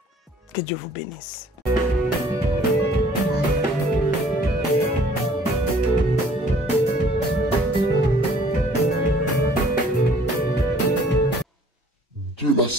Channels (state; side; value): normal; both; correlation 0.56